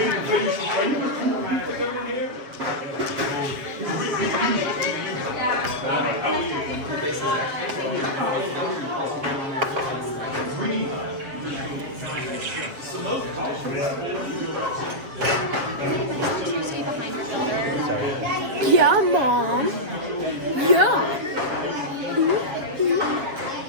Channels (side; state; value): left; late; 7.4 ms